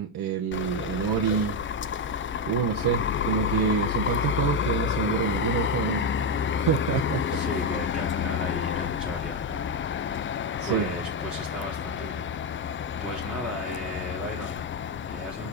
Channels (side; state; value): both; normal; correlation 0.07